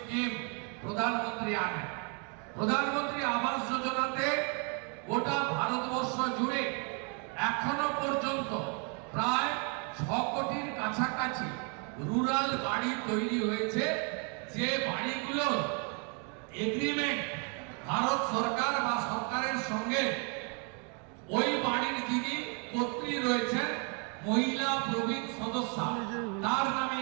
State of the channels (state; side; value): quieter; left; 37.2 dB